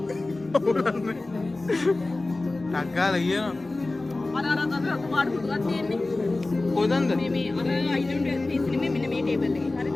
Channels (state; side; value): quieter; right; 3.1 dB